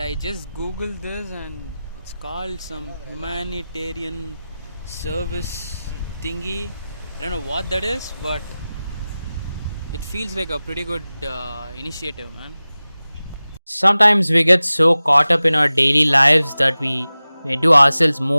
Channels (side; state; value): both; inverted; correlation -0.96